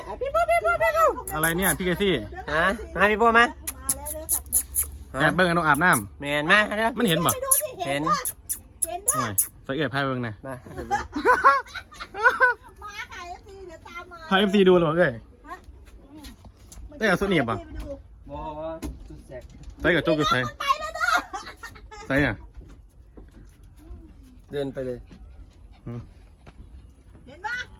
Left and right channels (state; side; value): identical; both; correlation 1.00